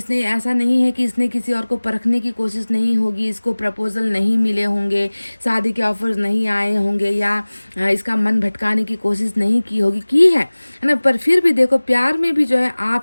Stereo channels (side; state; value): both; inverted; correlation -1.00